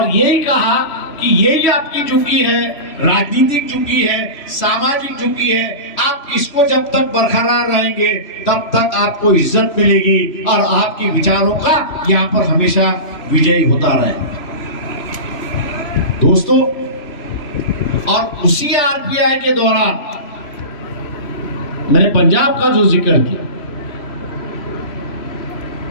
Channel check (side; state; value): right; late; 3.0 ms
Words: यही कहा कि यही आपकी झुकी है, राजनीतिक झुकी है, सामाजिक झुकी है। आप इसको जब तक बरकरार रहेंगे तब तक आपको इज्जत मिलेगी और आपके विचारों का यहाँ पर हमेशा विजयी होता रहेगा। दोस्तों, और उसी आरपीआई के दौरान मैंने पंजाब का जो जिक्र किया,